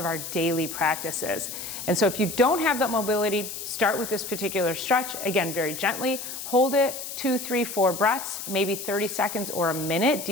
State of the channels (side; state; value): left; noise; hiss, 8 dB below the sound